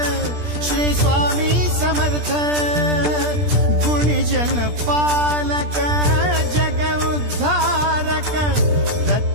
श्री स्वामी समर्थ गुणीजन पालक जग उद्धारक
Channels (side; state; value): left; late; 17 ms